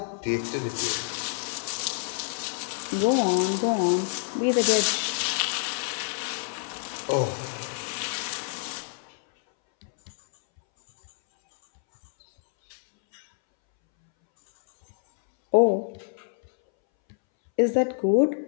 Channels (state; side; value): silent; right; 60 dB below the other